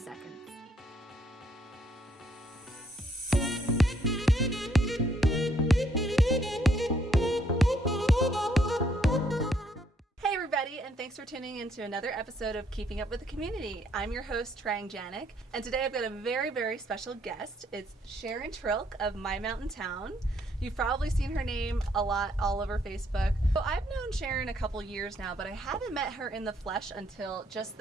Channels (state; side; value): normal; both; correlation 0.69